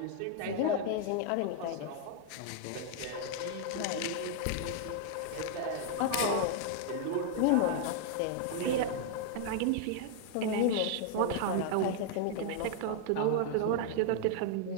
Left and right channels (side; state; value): both; different; correlation 0.00